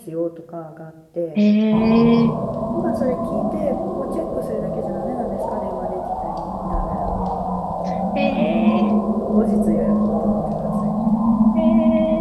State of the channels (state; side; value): identical; both; correlation 1.00